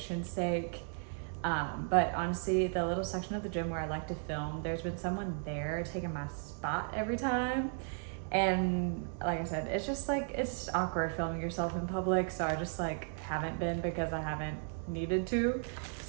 sake. But honestly, the little section of the gym where I like to film, there's been someone there taking my spot every time. And like I said, it's just like, it's awkward filming yourself in public. So I just like haven't been, because I haven't needed to.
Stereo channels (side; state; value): left; silent; 54 dB below the other